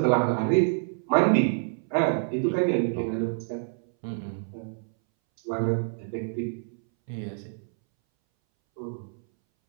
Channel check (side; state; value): left; silent; 60 dB below the other